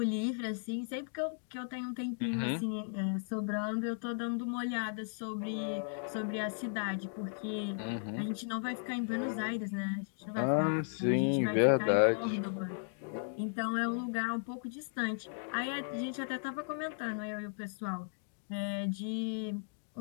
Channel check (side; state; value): right; silent; digital silence